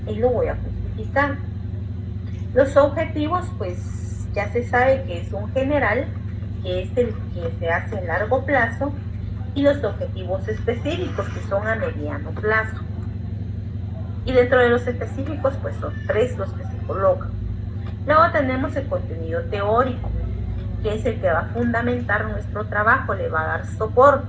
y lo voy a justificar. Los objetivos, pues ya se sabe que es un general, que es el que se hace a largo plazo, y los objetivos específicos, que son a mediano plazo. Y dentro de los específicos, pues son 3 los que se colocan. Luego tenemos el contenido teórico, que es el que va a fundamentar nuestro trabajo, le va a dar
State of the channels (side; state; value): both; identical; correlation 1.00